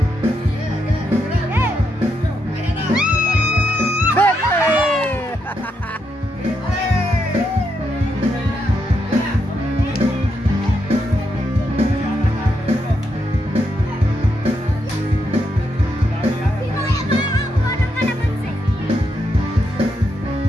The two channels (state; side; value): normal; both; correlation 0.81